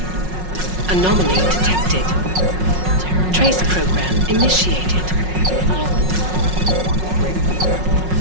Anomaly detected. Trace program initiated.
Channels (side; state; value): left; late; 5.4 ms